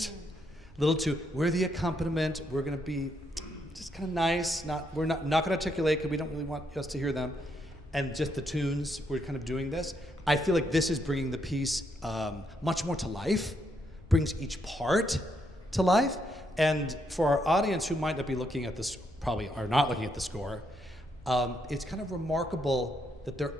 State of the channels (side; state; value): both; normal; correlation 0.77